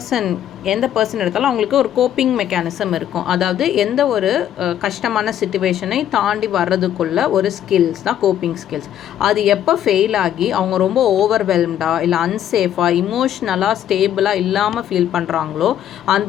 எந்த பர்சன் எடுத்தாலும் அவங்களுக்கு ஒரு கோப்பிங் மெக்கானிசம் இருக்கும். அதாவது எந்த ஒரு கஷ்டமான சிச்சுவேஷனை தாண்டி வர்றதுக்குள்ள ஒரு ஸ்கில்ஸ் தான் கோப்பிங் ஸ்கில்ஸ். அது எப்போ ஃபெயில் ஆகி அவங்க ரொம்ப ஓவர்வெல்ம்டாக இல்லை அன்சேஃபாக இமோஷ்னலாக ஸ்டேபிளாக இல்லாமல் ஃபீல் பண்ணுறாங்களோ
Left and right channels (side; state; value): right; quieter; 10.7 dB